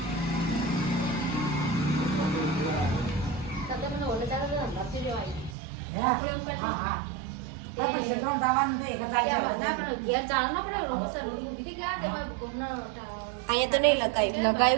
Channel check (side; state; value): left; drops out; at 5.6 s